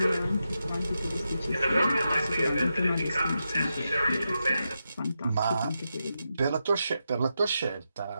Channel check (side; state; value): both; inverted; correlation -0.87